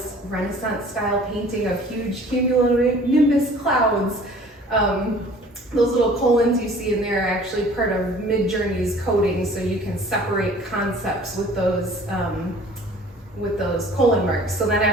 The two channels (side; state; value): both; normal; correlation 0.50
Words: Renaissance style painting of huge cumulonimbus clouds. Those little colons you see in there are actually part of Midjourney's coding, so you can separate concepts with those colon marks. So then